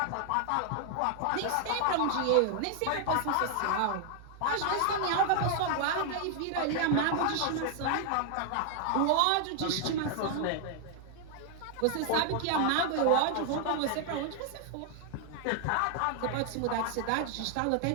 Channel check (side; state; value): both; different; correlation 0.00